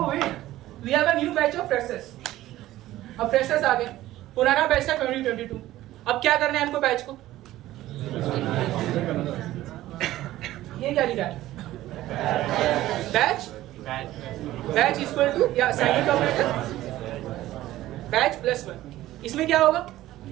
wait, we have a new batch of freshers. अब फ्रेशर्स आ गए, पुराना बैच था 2022। अब क्या करना है हमको बैच को? ये क्या लिखा है? बैच इक्वल टू या असाइनमेंट ऑपरेटर बैच प्लस 1। इसमें क्या होगा?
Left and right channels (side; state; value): left; quieter; 15.3 dB